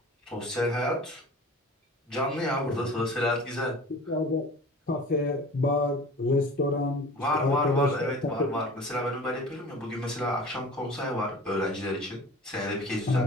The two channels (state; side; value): normal; both; correlation 0.41